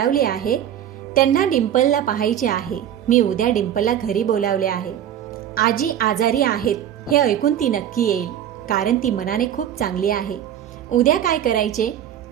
आहे. त्यांना डिंपलला पाहायचे आहे. मी उद्या डिंपलला घरी बोलावले आहे. आजी आजारी आहेत हे ऐकून ती नक्की येईल, कारण ती मनाने खूप चांगली आहे. उद्या काय करायचे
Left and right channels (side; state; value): left; quieter; 10.4 dB